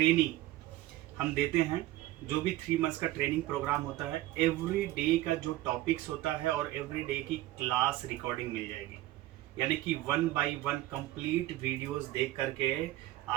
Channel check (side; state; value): left; quieter; 16.1 dB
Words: हम देते हैं, जो भी 3 मंथ्स का ट्रेनिंग प्रोग्राम होता है, एवरी डे का जो टॉपिक्स होता है और एवरी डे की क्लास रिकॉर्डिंग मिल जाएगी। यानी कि 1 बाय 1 कंप्लीट वीडियोस देख करके